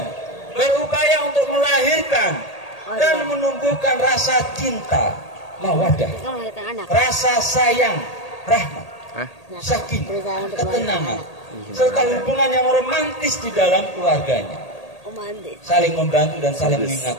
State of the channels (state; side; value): late; right; 1.8 ms